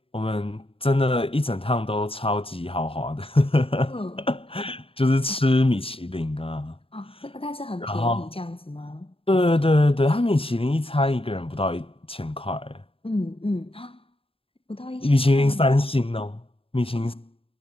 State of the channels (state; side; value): late; right; 0.27 ms